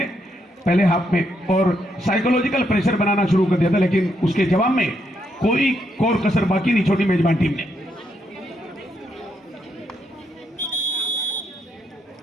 पहले हाफ में और साइकोलॉजिकल प्रेशर बनाना शुरू कर दिया था, लेकिन उसके जवाब में कोई कोर कसर बाकी नहीं छोड़ी मेजबान टीम ने।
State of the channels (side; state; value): both; normal; correlation 0.78